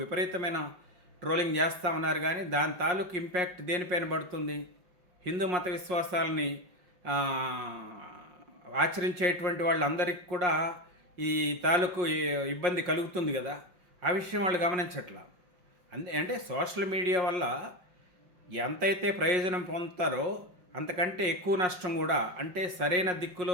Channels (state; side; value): late; left; 5.5 ms